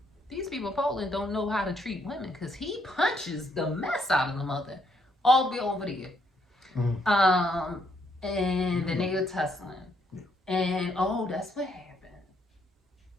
These people in Poland don't know how to treat women, because he punches the mess out of the mother all the way over there. And then they were tussling. Yeah. And that's what happened.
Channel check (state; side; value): normal; both; correlation 0.72